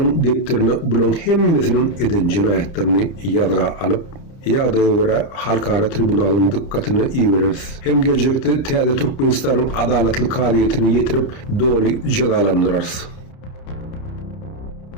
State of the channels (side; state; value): right; late; 30 ms